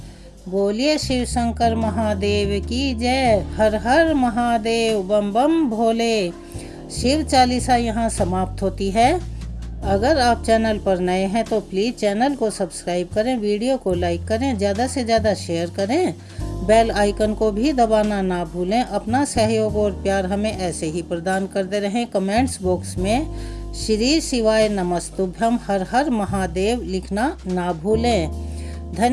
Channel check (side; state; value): both; identical; correlation 1.00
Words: बोलिए शिव शंकर महादेव की जय। हर हर महादेव, बम बम भोले। शिव 40 यहाँ समाप्त होती है। अगर आप चैनल पर नए हैं तो प्लीज़ चैनल को सब्सक्राइब करें, वीडियो को लाइक करें, ज़्यादा से ज़्यादा शेयर करें, बेल आइकन को भी दबाना ना भूलें। अपना सहयोग और प्यार हमें ऐसे ही प्रदान करते रहें। कमेंट्स बॉक्स में श्री शिवाय नमस्तुभ्यम हर हर महादेव लिखना ना भूलें।